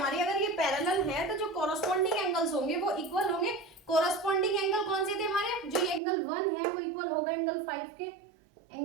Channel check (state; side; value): drops out; left; at 6.0 s